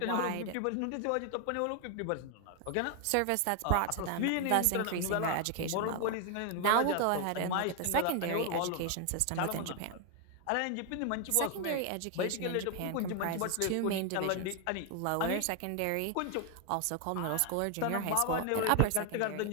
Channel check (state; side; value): different; both; correlation 0.01